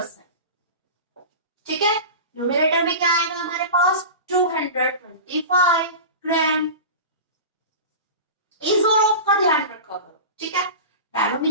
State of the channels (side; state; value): both; inverted; correlation -0.31